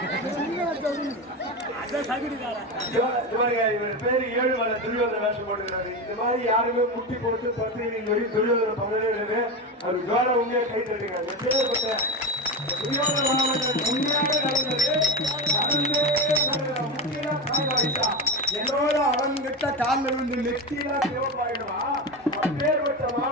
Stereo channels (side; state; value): both; normal; correlation 0.18